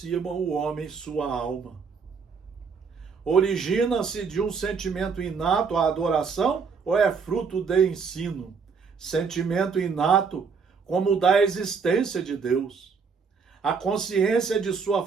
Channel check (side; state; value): left; quieter; 5.5 dB